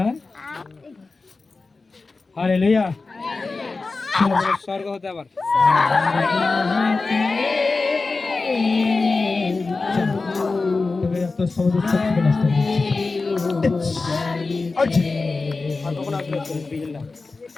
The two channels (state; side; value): quieter; right; 3.9 dB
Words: হালেলুয়া। চলো বলো স্বর্গ হতে আবার। তো সমাজ থেকে নষ্ট